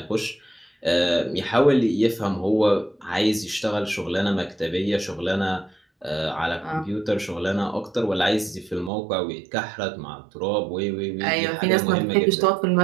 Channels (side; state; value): left; drops out; at 8.9 s